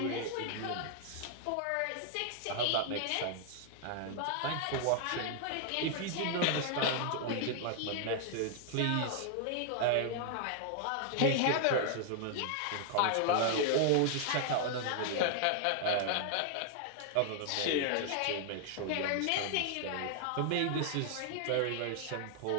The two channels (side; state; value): both; different; correlation 0.00